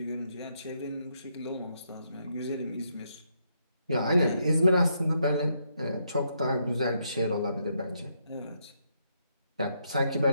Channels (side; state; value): both; inverted; correlation -0.77